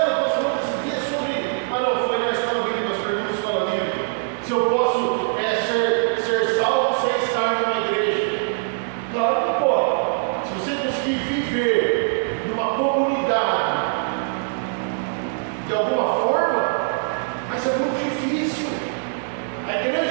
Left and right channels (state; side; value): silent; left; digital silence